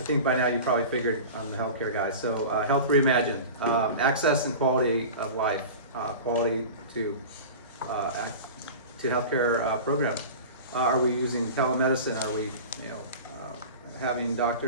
think by now you probably figured I'm the healthcare guy. So, Health Reimagined, access and quality of life, quality to healthcare programs. Are we using telemedicine? Are we, having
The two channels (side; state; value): both; inverted; correlation -0.34